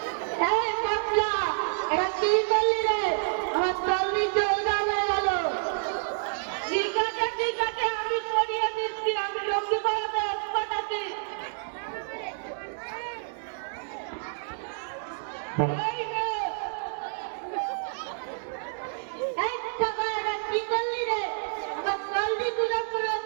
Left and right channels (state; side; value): silent; left; digital silence